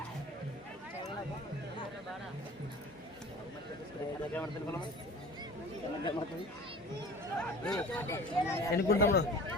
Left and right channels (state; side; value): normal; both; correlation 0.41